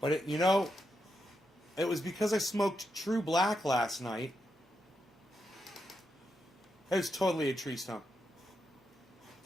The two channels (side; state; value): both; normal; correlation 0.84